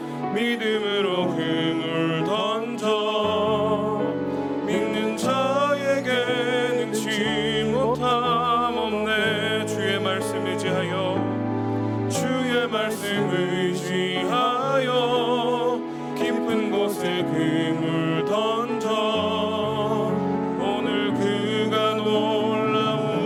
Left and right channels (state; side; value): identical; both; correlation 1.00